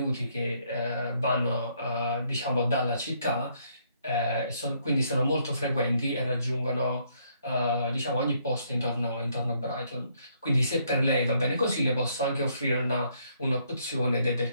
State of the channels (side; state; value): both; inverted; correlation -0.70